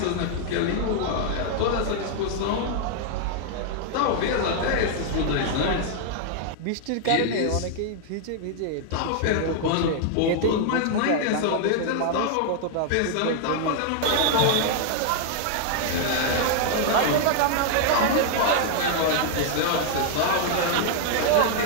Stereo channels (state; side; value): different; both; correlation 0.00